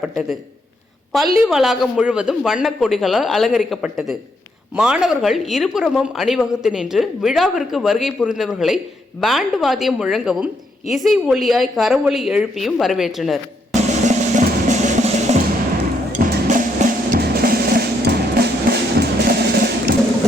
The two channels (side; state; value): both; normal; correlation 0.76